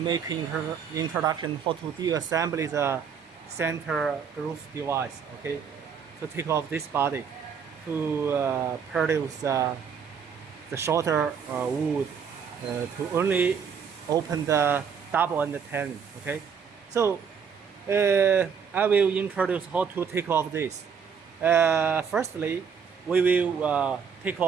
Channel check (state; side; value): quieter; left; 6.7 dB